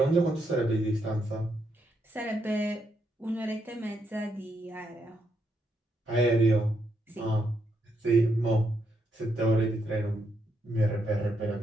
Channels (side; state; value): both; normal; correlation 0.78